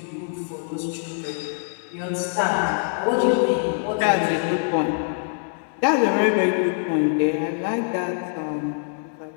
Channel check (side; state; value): right; silent; 63 dB below the other